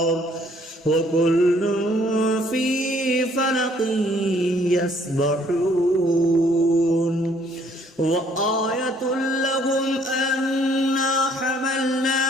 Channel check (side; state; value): both; normal; correlation 0.62